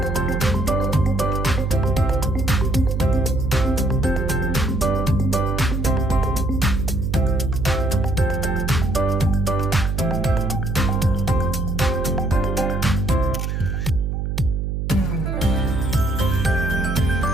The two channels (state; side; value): noise; right; hum, 2 dB below the sound